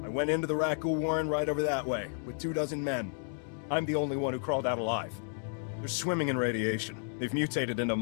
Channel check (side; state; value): right; silent; 56 dB below the other